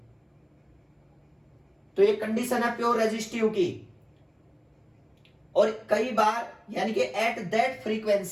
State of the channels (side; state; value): both; identical; correlation 1.00